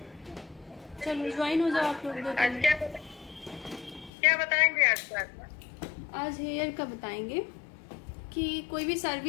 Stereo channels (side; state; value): right; drops out; at 4.1 s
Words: चलो ज्वाइन हो जाओ आप लोग। आज क्या बताएंगे आज क्लास में? आज हेयर का बताएंगे कि कोई भी